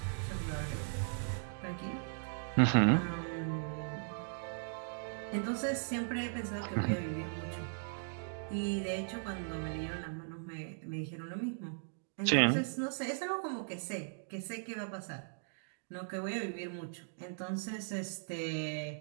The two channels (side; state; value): left; silent; digital silence